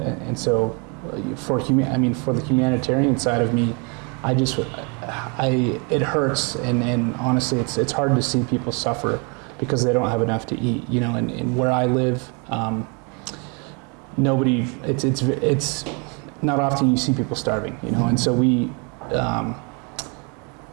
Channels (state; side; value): quieter; left; 33.9 dB